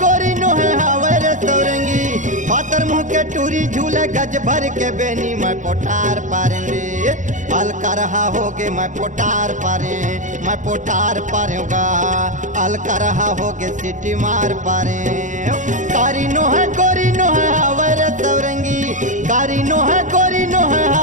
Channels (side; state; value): left; late; 0.36 ms